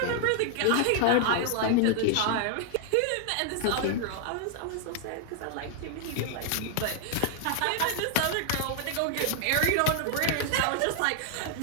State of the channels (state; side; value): different; both; correlation 0.00